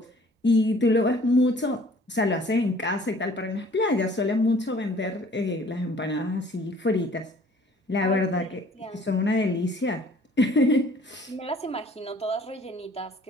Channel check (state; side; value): normal; both; correlation 0.54